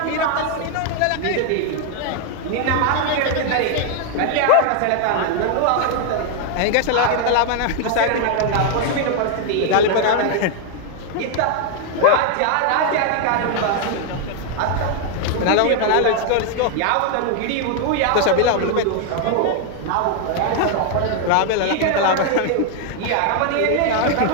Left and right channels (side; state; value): both; different; correlation 0.00